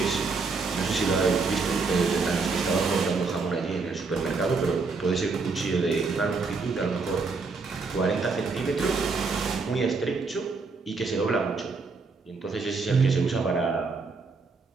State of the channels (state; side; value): quieter; left; 4.3 dB